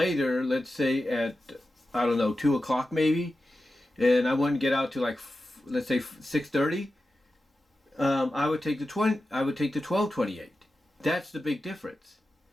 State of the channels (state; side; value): normal; both; correlation 0.92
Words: let's say at 2 o'clock maybe, and I wouldn't get out to let's say 6:30, I would take the 1228. That's the big difference.